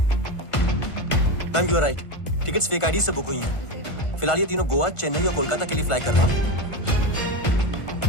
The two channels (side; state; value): right; late; 1.5 ms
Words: Ma'am, you are right. Tickets fake ID से बुक हुई हैं। फिलहाल ये तीनों गोवा, चेन्नई और कोलकाता के लिए फ्लाई कर रहे हैं।